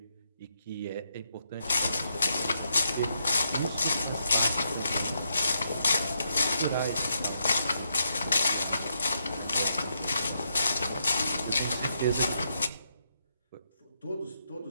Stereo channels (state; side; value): inverted; both; correlation -0.80